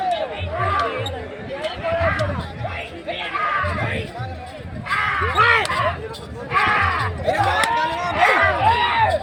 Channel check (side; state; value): both; identical; correlation 1.00